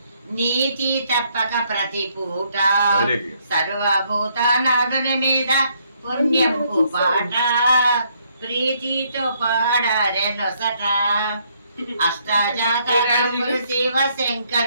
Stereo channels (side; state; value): both; inverted; correlation -0.70